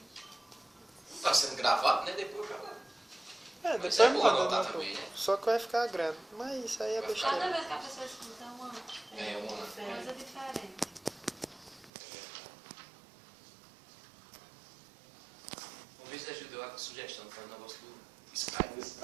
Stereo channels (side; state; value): left; drops out; at 11.9 s